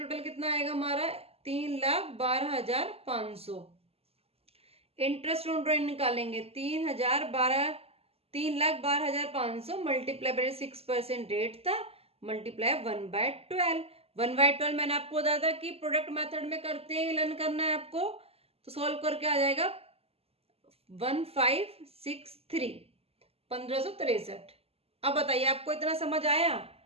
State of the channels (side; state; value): left; late; 0.29 ms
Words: कितना आएगा हमारा? 3,12,500। इंटरेस्ट ऑन ड्राइंग निकालेंगे, 3,12,500 मल्टीप्लाई बाय 6% रेट था, मल्टीप्लाई 1/12। 1/12 मैंने आपको बताया था कि प्रोडक्ट मेथड में करते हैं, लर्न करना है आपको, तो सॉल्व करके आ जाएगा 1563, 1563। अब बताइए आपको इतना समझ आया?